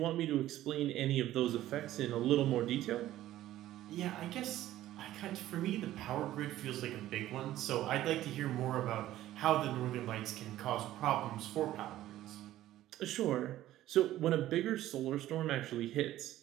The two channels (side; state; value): left; quieter; 14.1 dB